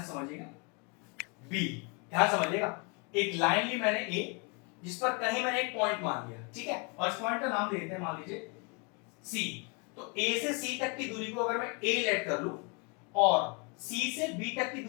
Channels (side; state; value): right; quieter; 32.4 dB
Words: समझिएगा, बी, ध्यान समझिएगा। एक लाइन ली मैंने ए जिस पर कहीं मैंने एक पॉइंट मान लिया, ठीक है, और इस पॉइंट का नाम दे देते हैं, मान लीजिए सी। तो ए से सी तक की दूरी को अगर मैं ए लेट कर लूं और सी से बी तक की